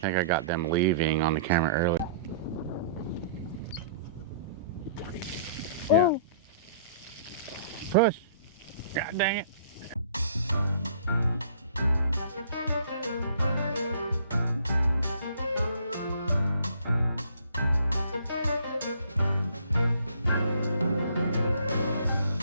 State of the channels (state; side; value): inverted; both; correlation -0.55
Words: I got them leaving on the camera earlier. Yeah. Push. God dang it.